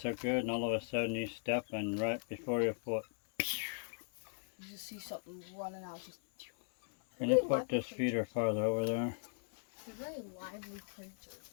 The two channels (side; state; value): right; silent; 52 dB below the other